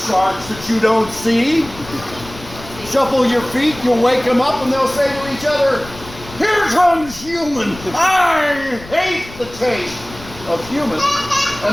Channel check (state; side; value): noise; left; rumble, 17 dB below the sound